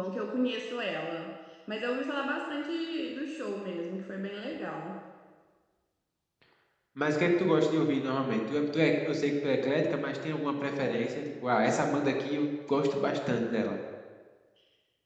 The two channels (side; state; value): both; identical; correlation 1.00